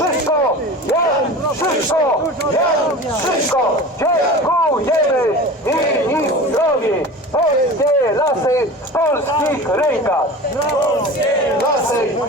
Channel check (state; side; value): normal; both; correlation 0.35